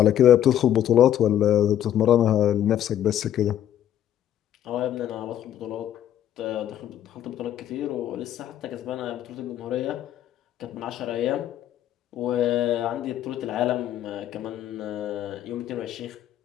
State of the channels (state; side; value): quieter; right; 11.1 dB